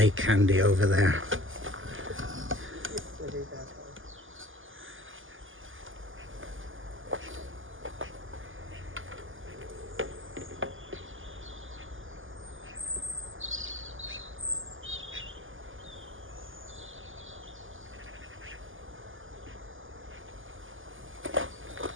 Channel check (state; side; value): late; left; 0.58 ms